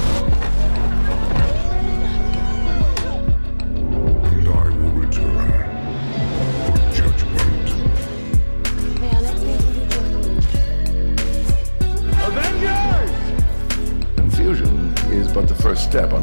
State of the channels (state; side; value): inverted; both; correlation -1.00